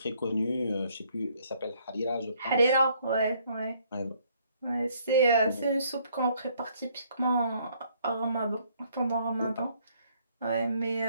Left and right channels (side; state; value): both; inverted; correlation -0.65